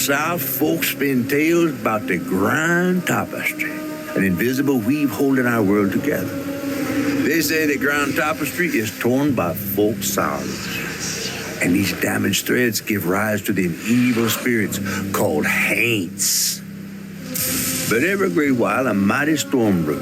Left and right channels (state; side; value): identical; both; correlation 1.00